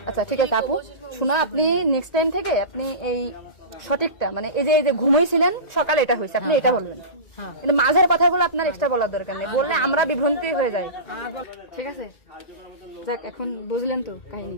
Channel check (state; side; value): late; right; 1.9 ms